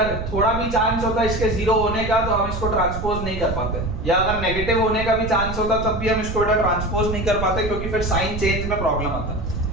थोड़ा भी चांस होता इसके जीरो होने का तो हम इसको ट्रांसपोज नहीं कर पाते, या अगर नेगेटिव होने का भी चांस होता तब भी हम इसको बेटा ट्रांसपोज नहीं कर पाते क्योंकि फिर साइन चेंज में प्रॉब्लम आता।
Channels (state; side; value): noise; right; rumble, 7 dB below the sound